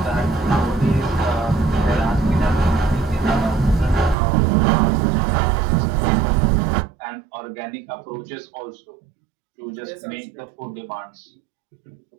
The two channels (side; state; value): left; drops out; at 4.2 s